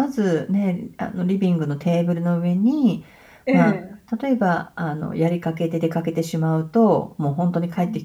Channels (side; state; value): both; identical; correlation 1.00